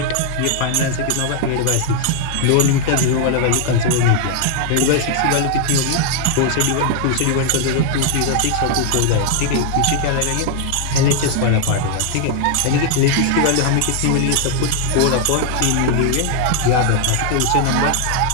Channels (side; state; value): both; different; correlation 0.00